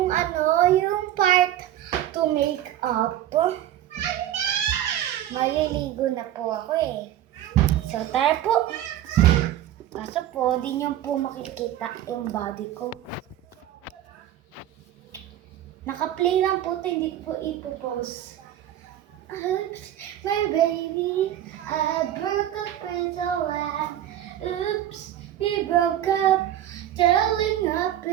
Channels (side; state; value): left; quieter; 12.1 dB